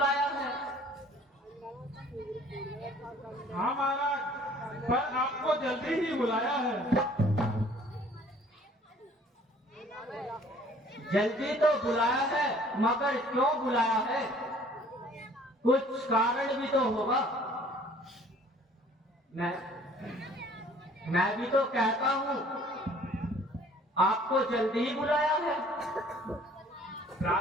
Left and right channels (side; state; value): both; normal; correlation 0.54